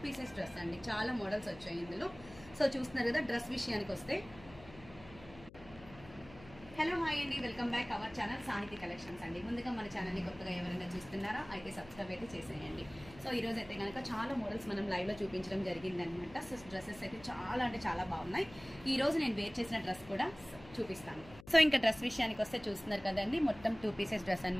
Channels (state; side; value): noise; left; hum, 19 dB below the sound